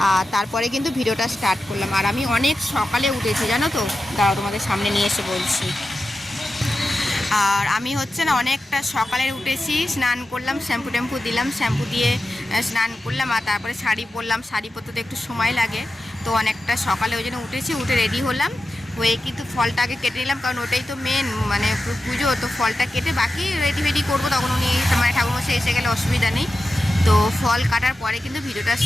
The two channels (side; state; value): both; normal; correlation 0.92